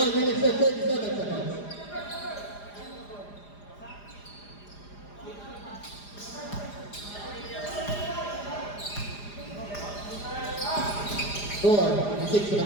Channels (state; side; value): late; right; 4.9 ms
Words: minutes and 37 seconds. Score